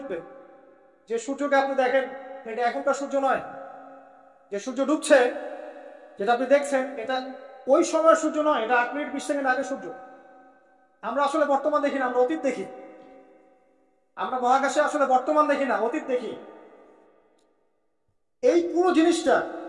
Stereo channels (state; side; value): identical; both; correlation 1.00